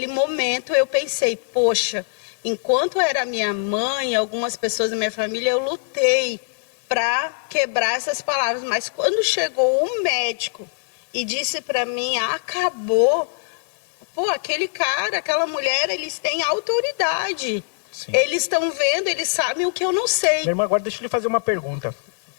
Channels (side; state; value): right; silent; digital silence